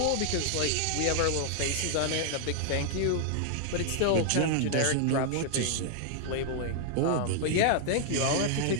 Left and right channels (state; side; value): different; both; correlation 0.00